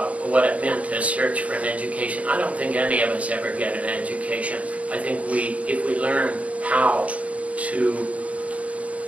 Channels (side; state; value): left; late; 0.067 ms